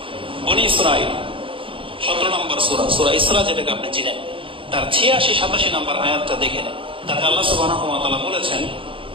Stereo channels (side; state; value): left; late; 0.25 ms